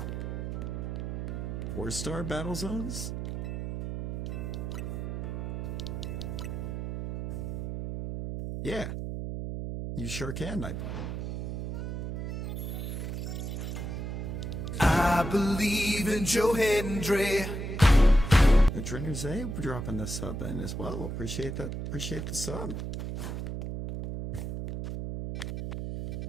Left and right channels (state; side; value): noise; right; hum, 4 dB below the sound